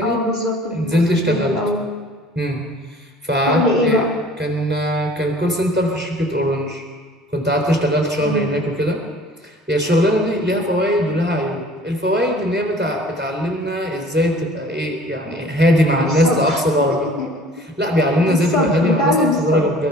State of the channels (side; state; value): both; normal; correlation 0.49